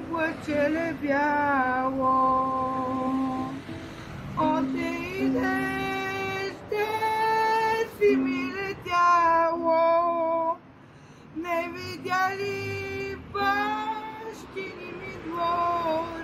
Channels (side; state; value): both; identical; correlation 1.00